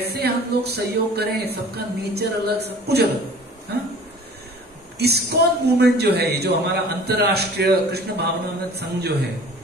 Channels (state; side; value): normal; both; correlation 0.46